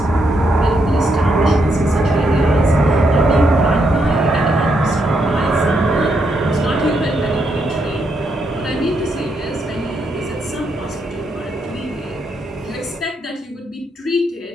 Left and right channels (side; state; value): both; normal; correlation 0.78